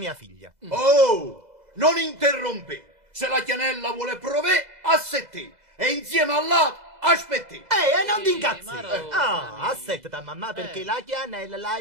figlia. Oh, non interrompe. Se la Chianella vuole provare, assetti. E insieme all'altro, aspetti. Non ti incazzi. Aspettata, mamma, perché la Chianella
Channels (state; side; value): late; left; 2.0 ms